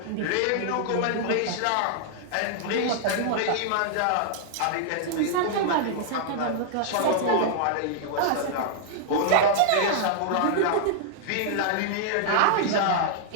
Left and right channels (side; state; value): both; different; correlation -0.01